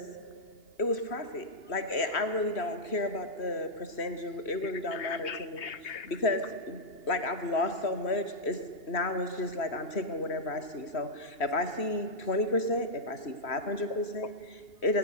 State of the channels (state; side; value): late; right; 2.8 ms